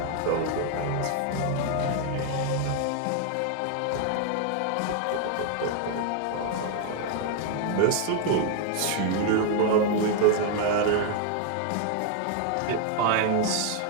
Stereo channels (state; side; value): different; both; correlation 0.00